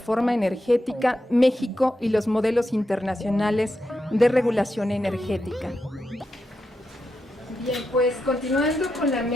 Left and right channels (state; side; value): normal; both; correlation 0.86